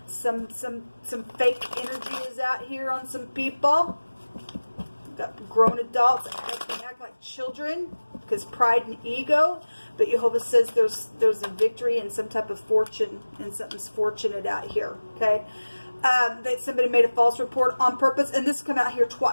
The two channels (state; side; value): inverted; both; correlation -1.00